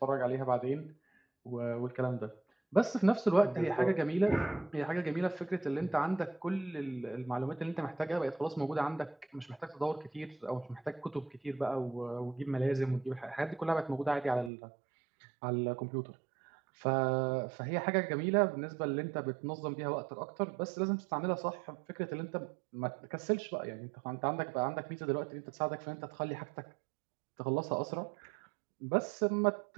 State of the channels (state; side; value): drops out; left; at 14.5 s